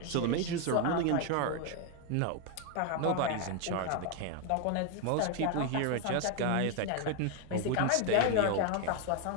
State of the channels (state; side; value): different; both; correlation 0.01